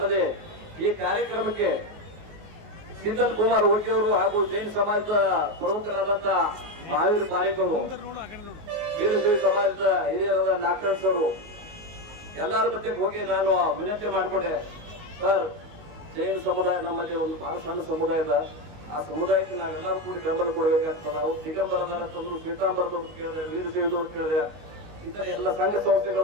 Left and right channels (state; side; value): late; left; 19 ms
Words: ಈ ಕಾರ್ಯಕ್ರಮಕ್ಕೆ ಸಿಂಧಲ್ ಕುಮಾರ್ ಓಕಿಯವರು ಹಾಗೂ ಜೈನ್ ಸಮಾಜದ ಪ್ರಮುಖರಾದಂತ ಮಹಾವೀರ್ ಪಾರೇಕರು, ವೀರಶೈವ ಸಮಾಜದ ಹಿರಿಯರಾದ ನಾಗರಾಜ್ ಅವರು ಎಲ್ಲರ ಮಧ್ಯೆ ಹೋಗಿ ನಾನು ವಿನಂತಿ ಮಾಡಿಕೊಂಡೆ, ಸರ್ ಜೈನ ಸಮುದಾಯ ನಮ್ಮಲ್ಲಿ ಒಂದು ಬಹಳ ಸಣ್ಣ ಸಮುದಾಯದ, ಆ ಸಮುದಾಯಕ್ಕೆ ನಾವೆಲ್ಲರೂ ಕೂಡಿ ಬೆಂಬಲ ಕೊಡಬೇಕಾಗ್ತದೆ. ಅವ್ರು ದಿಗಂಬರದಾರ ತಂದ್ರು, ಶ್ವೇತಾಂಬರದವ್ರು ಕೇಳಿದೆ, ವೀರಶೈವದವ್ರು ಕೇಳಿದೆ, ಇತರ ಎಲ್ಲ ಸಂಘ